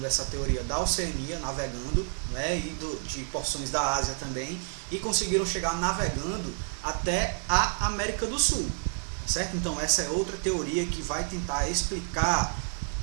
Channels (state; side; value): silent; left; 58 dB below the other